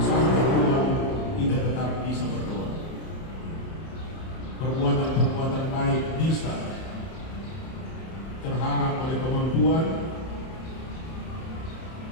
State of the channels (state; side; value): late; right; 31 ms